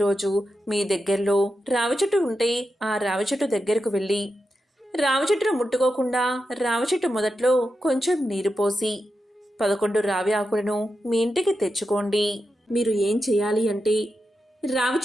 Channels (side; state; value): both; normal; correlation 0.88